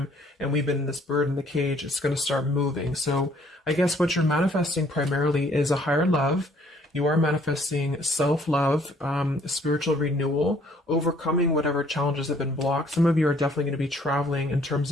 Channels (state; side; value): normal; both; correlation 0.61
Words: and we've been in this bird in the cage, it's going to start moving. So I guess what you're manifesting primarily is a higher love. You are manifesting self-love, spiritual renewal, overcoming whatever challenges have been blocked. Some of you are definitely going to be traveling in terms